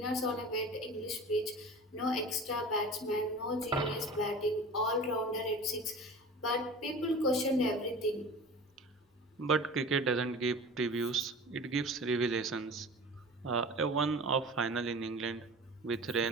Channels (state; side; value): normal; both; correlation 0.38